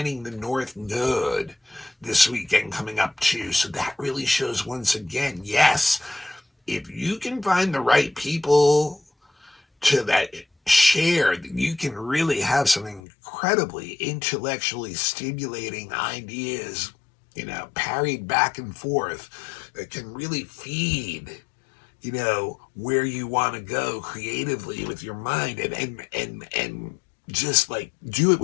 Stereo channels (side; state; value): right; drops out; at 13.0 s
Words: the North Node this weekend coming up too. So that really shows once again, yes, if you can find the right people to that share, you can really have some incredibly intellectually stimulating ideas, parried back and forth, that can really feed, where you want to go creatively with your mind, and just like do it